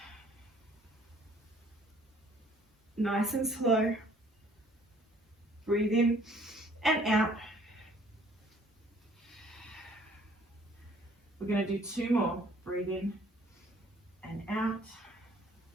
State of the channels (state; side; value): normal; both; correlation 0.59